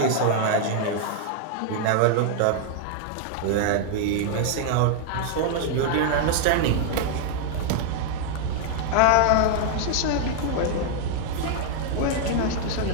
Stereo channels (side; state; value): both; different; correlation 0.00